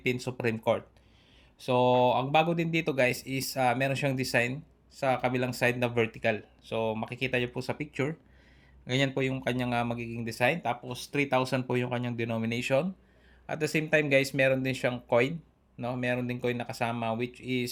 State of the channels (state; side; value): identical; both; correlation 1.00